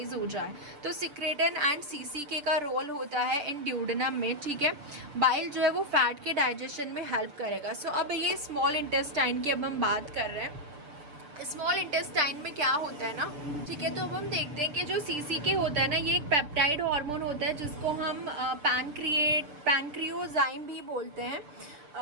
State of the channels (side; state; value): left; late; 6.7 ms